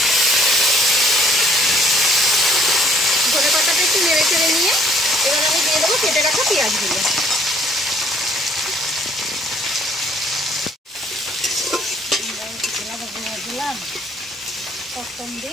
ধনেপাতাটা একটু নেড়ে চেড়ে নিয়ে এবার আমি দিয়ে দেবো কেটে রাখা পেঁয়াজগুলো।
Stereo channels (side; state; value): both; normal; correlation 0.60